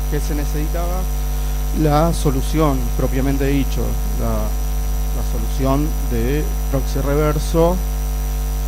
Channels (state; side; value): identical; both; correlation 1.00